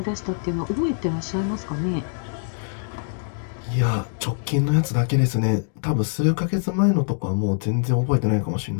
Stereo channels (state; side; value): silent; right; digital silence